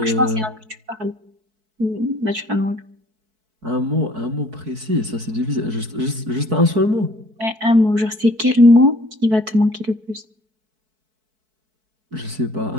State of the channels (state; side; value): late; left; 4.6 ms